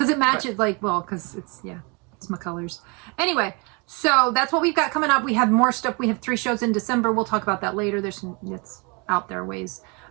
it matches, because it's my colors. Anyway, so that's what we've got coming up. We have more stuff. We have 3 shows in December. We'll talk about that later. It's out there ways.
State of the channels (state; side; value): quieter; left; 31.0 dB